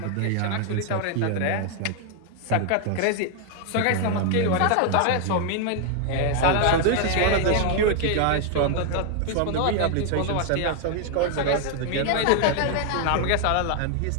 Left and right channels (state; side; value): different; both; correlation 0.00